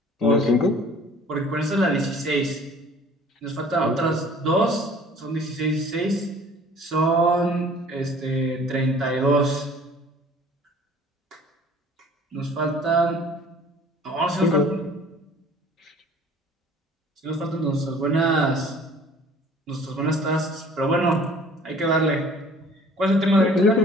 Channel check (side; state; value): both; normal; correlation 0.51